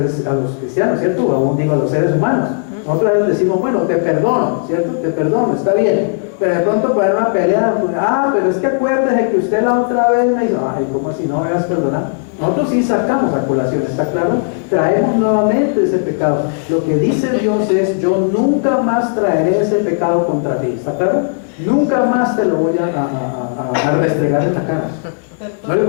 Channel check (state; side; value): silent; right; digital silence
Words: cristianos, ¿cierto? O aún digo a los seres humanos. Nosotros a veces decimos: bueno, te perdono, ¿cierto? Te perdono, está bien. Pero de pronto para una pelea, pues, pero es que acuérdese que usted la otra vez me hizo, ¿cómo así no me vas a perdonar? Nosotros sí sacamos a colación, ¿está claro? Traemos nuevamente ese pecado. Lo que dice Dios es: yo nunca más traeré ese pecado contra ti, ¿está claro? Nunca más te lo voy a restregar en la cara. ¿No le